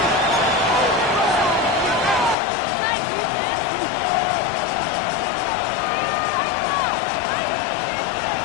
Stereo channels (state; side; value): drops out; right; at 2.4 s